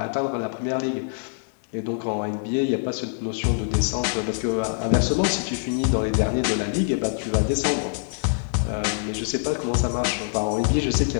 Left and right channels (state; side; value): silent; right; digital silence